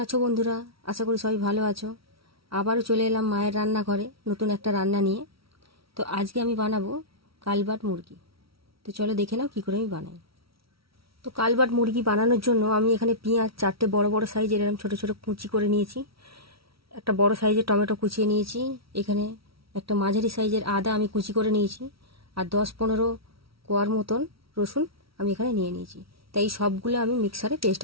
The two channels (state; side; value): late; left; 0.75 ms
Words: আছো বন্ধুরা? আশা করি সবাই ভালো আছো। আবারও চলে এলাম মায়ের রান্নাঘরে নতুন একটা রান্না নিয়ে। তো আজকে আমি বানাবো কালবাট মুরগি। তো চলো দেখে নাও কী করে আমি বানাই। তো কালবাট মুরগি বানানোর জন্য আমি এখানে পেঁয়াজ 4টে বড় বড় সাইজের এরকম ছোটো ছোটো কুচি করে নিয়েছি। একটা বড় সাইজের টমেটো কুচিয়ে নিয়েছি। এখানে একটা মাঝারি সাইজের আদা আমি কুচি করে নিয়েছি। আর 10-15 কোয়ার মতন রসুন আমি এখানে নিয়ে নিয়েছি। তাই সবগুলো আমি মিক্সারে পেস্ট